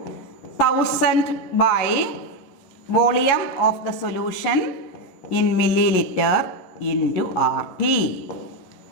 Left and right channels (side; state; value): right; late; 11 ms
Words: 1000 by volume of the solution in milliliter into RT.